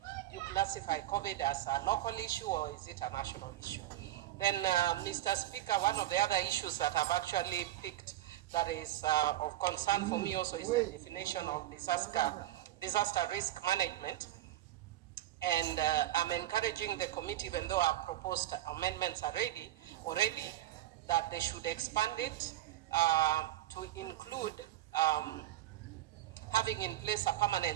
do you classify COVID as a local issue or is it a national issue? Then, Mr. Speaker, one of the other issues that I've actually picked that is of concern for me also is the definition of disaster risk management. And I'm encouraging the committee, even though our proposed amendments are already, that they should expand it to include having in place a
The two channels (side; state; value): left; quieter; 14.3 dB